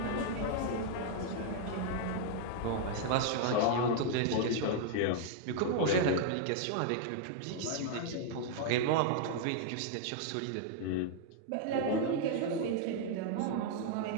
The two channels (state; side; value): different; both; correlation -0.01